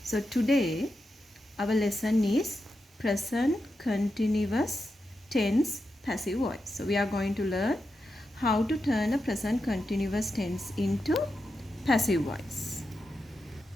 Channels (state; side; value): normal; both; correlation 0.88